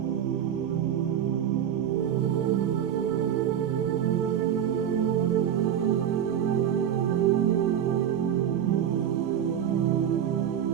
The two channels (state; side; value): quieter; left; 9.5 dB